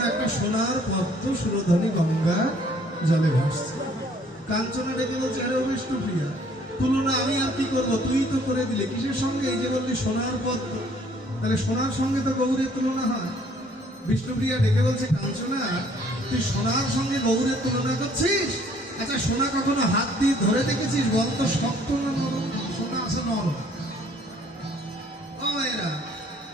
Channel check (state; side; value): normal; both; correlation 0.60